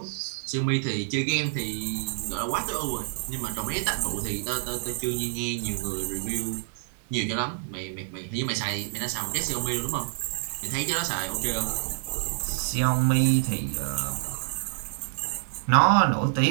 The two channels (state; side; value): silent; left; 60 dB below the other